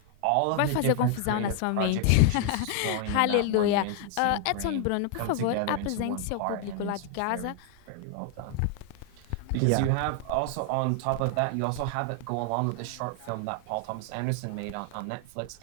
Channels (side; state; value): both; different; correlation 0.00